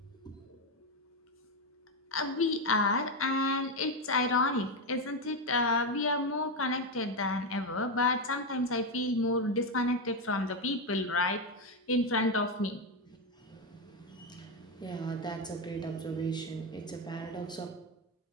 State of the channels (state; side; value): normal; both; correlation 0.09